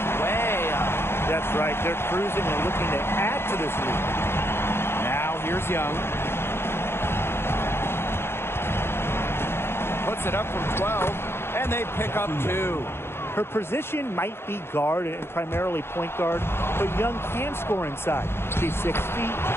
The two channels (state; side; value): late; right; 0.12 ms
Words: way up. That's right. They're cruising and looking to add to this lead. Now here's Young. Puts it up from 12, and they pick up 2. Her position might be guard and primarily point guard, but Young can score inside. She's 6 feet,